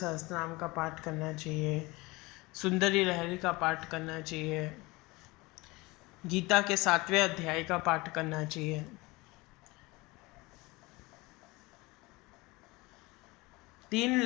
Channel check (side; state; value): right; quieter; 22.9 dB